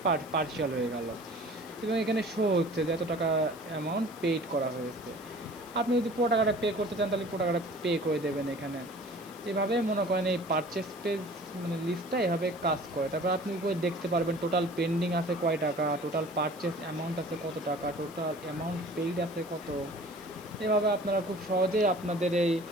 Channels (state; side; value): noise; left; hiss, 21 dB below the sound